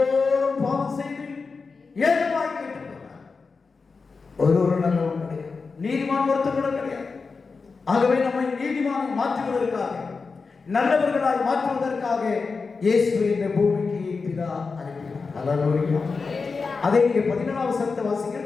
பாவம் செய்து ஏகமாய் கேட்டு போனார். ஒரு நல்லவன் கிடையாது, நீதிமான் ஒருத்தர் கூட கிடையாது. ஆகவே நம்மை நீதிமானை மாற்றுவதற்காக, நல்லவர்களாய் மாற்றுவதற்காக இயேசு இந்த பூமிக்கு பிதா அனுப்பினார். அல்லேலூயா. அதை நீங்க 14ஆம் வசனத்தை வாசிங்கள்.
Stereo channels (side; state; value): right; quieter; 4.6 dB